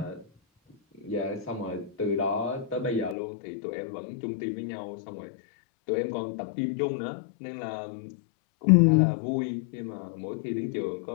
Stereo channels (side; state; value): right; drops out; at 3.2 s